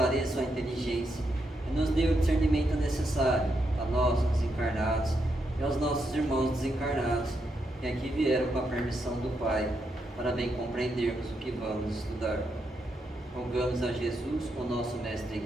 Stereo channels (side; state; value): both; normal; correlation 0.82